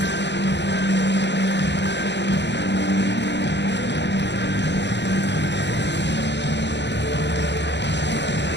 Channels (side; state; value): right; late; 0.51 ms